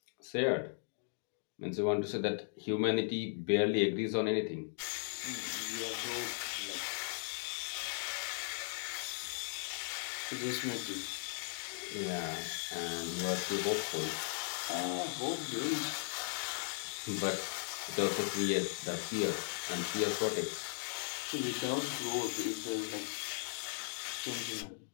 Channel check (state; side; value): silent; right; digital silence